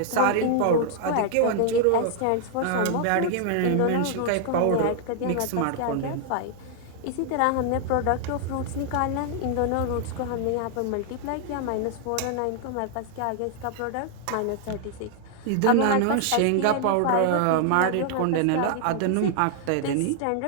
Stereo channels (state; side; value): different; both; correlation 0.00